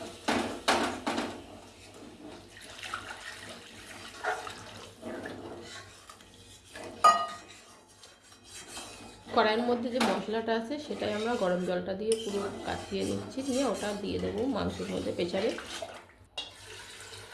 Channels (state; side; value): identical; both; correlation 1.00